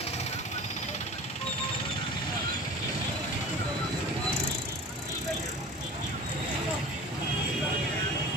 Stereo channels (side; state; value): both; normal; correlation 0.38